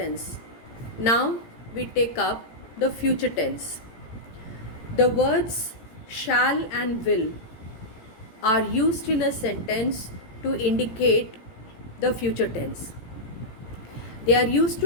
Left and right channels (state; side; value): late; right; 18 ms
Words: Now we take up the future tense. The words shall and will are used in a sentence to indicate the future tense. They are used